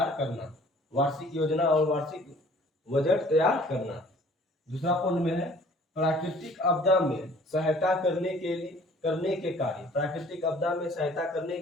करना, वार्षिक योजना और वार्षिक बजट तैयार करना। दूसरा पॉइंट में है प्राकृतिक आपदा में सहायता करने के कार्य, प्राकृतिक आपदा में सहायता करने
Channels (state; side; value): normal; both; correlation 0.53